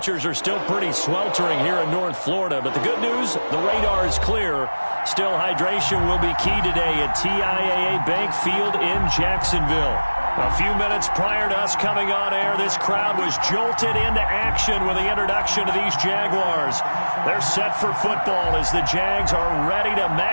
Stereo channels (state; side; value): inverted; both; correlation -1.00